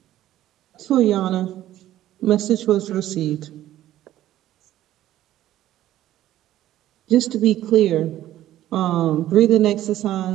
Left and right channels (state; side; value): quieter; left; 13.4 dB